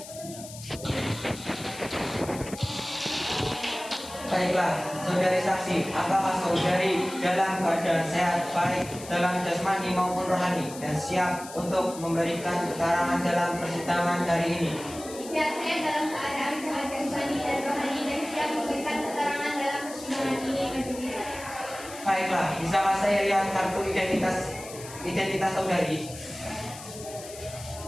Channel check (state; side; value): noise; left; hiss, 14 dB below the sound